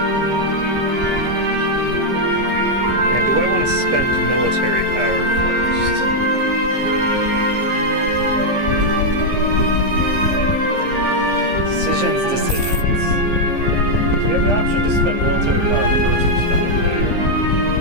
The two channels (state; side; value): late; left; 15 ms